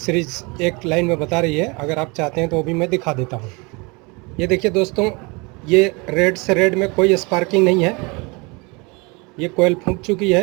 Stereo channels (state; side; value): quieter; left; 28.2 dB